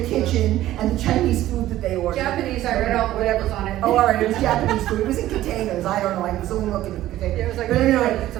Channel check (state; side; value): quieter; left; 14.3 dB